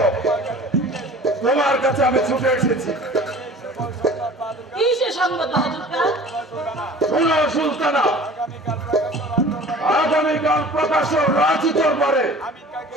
তোমার কাছে আমি ছুটে এসেছি। কিসের সংবাদ বাহাদুর খান? শোনো সুলতানা, আগামীকাল প্রকাশ্য রাজি দরবারে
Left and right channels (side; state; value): both; normal; correlation 0.44